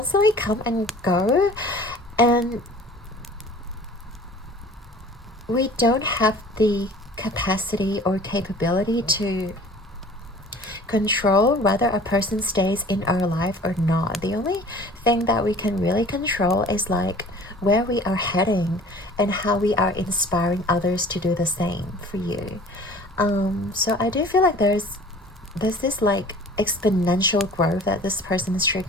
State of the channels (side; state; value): both; normal; correlation 0.47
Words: come and go, and we don't have the capacity or capability to control whether a person stays in our life or not. The only thing that we can really control is like where we are heading and how we are inspiring others to do the same for you. So I do feel like there's this like exponential growth that this person is